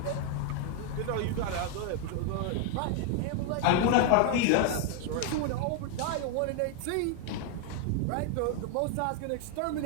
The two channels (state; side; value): different; both; correlation 0.00